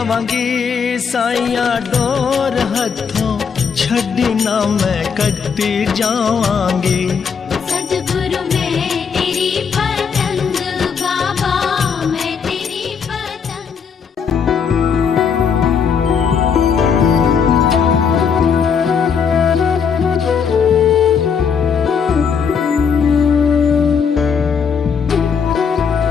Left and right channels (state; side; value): quieter; right; 6.4 dB